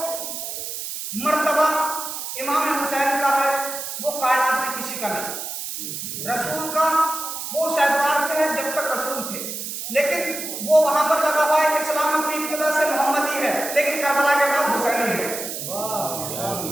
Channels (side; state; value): right; noise; hiss, 6 dB below the sound